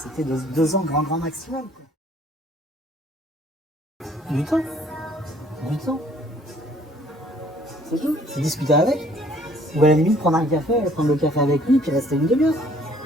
2 ans grand maximum. Quoi. Du temps. C'est tout. C'est discuter avec. Ou à la limite prendre le café avec lui, puis rester une demi-heure.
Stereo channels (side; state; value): both; normal; correlation 0.59